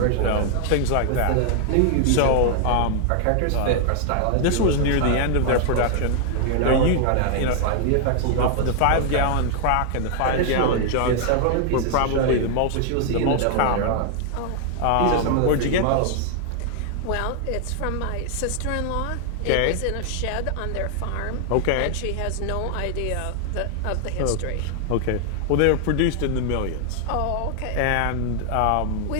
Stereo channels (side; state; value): both; different; correlation 0.00